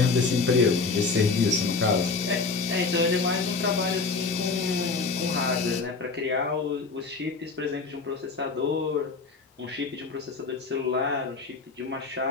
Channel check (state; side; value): quieter; right; 4.3 dB